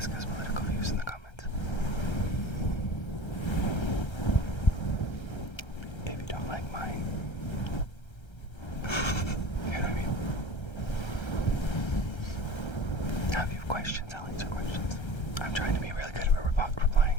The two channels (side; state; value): right; late; 1.3 ms